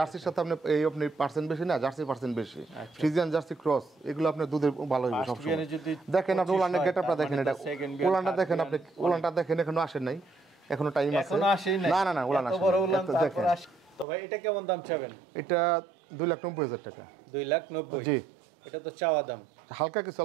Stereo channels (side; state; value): left; drops out; at 14.1 s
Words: সাথে আপনি এই আপনি পার্সেন্ট বেশি না, জার্সি পার্সেন্ট বেশি, ফ্রিজিয়ান জার্সি ক্রস, এগুলো আপনার দুধের ভালো হবে First সবসময়। বিয়ানে যদি দেখেন আপনি 25 উলানের হয়, গেটআপটা তার দেখেন, মানে এটা তো second বিয়ান, উলানটা third দেখেন আপনি, বিয়ান, উলানটা দেখেন এখনো আসেন নাই, এখনো টাইম আছে। এখনো আসেই নাই? না না না উলান এত আসে বড় নাই। উলান, এত তারপর দেখেন, আসে। তো ভাই এটা কেমন দাম চাবেন? এটা 2,90,000 টাকা। 2,90,000? জি, এটা তো চাওয়া দাম, হালকা কিছু